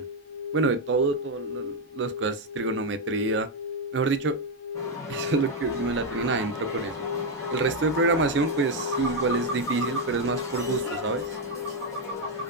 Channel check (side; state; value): both; normal; correlation 0.03